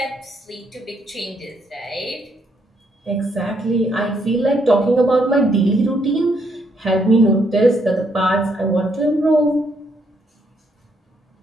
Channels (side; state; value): both; normal; correlation 0.73